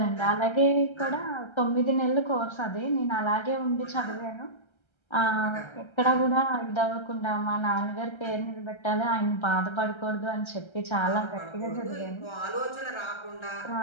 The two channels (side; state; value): right; late; 1.3 ms